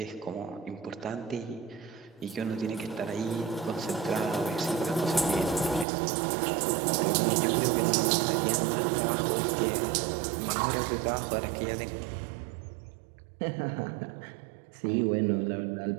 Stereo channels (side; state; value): left; drops out; at 5.9 s